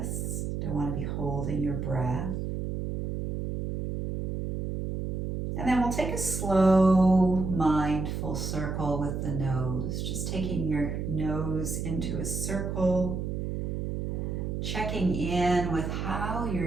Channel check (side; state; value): right; noise; hum, 3 dB below the sound